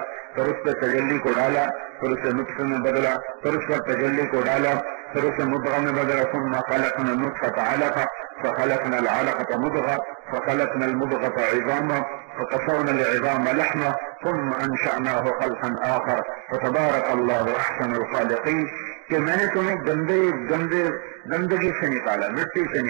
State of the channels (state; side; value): quieter; left; 39.8 dB